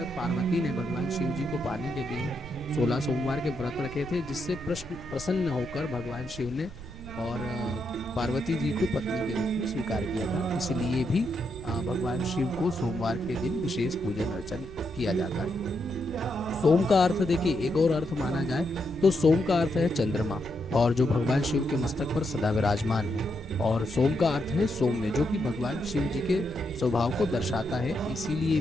पार्वती ने भगवान शिव जी को पाने के लिए 16 सोमवार के व्रत रखे थे, जिससे प्रसन्न होकर भगवान शिव ने और पार्वती जी को पत्नी के रूप में स्वीकार किया था। इसलिए भी भगवान शिव को सोमवार के दिन विशेष पूजन अर्चन किया जाता है। सोम का अर्थ देखिए, एक और अर्थ माना जाए तो सोम का अर्थ है चंद्रमा, और जो भगवान शिव के मस्तक पर सदा विराजमान है। और सोम का अर्थ है सौम्य, जो कि भगवान शिव जी के स्वभाव को दर्शाता है। इसीलिए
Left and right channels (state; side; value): noise; right; rumble, 14 dB below the sound